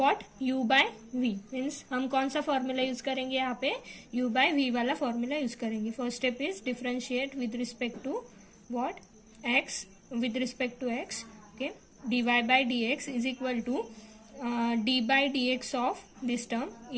u by v means हम कौन सा formula use करेंगे यहाँ पे? u by v वाला formula use करेंगे। First step is differentiate with respect to what? x with respect to x. Okay, dy by dx is equal to d by dx of this term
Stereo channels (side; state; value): both; identical; correlation 1.00